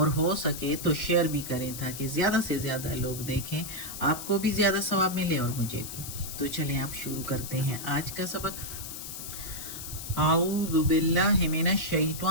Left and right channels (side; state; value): left; noise; hiss, 9 dB below the sound